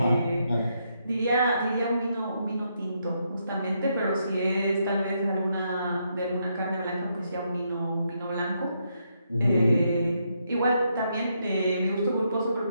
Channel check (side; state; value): both; inverted; correlation -0.78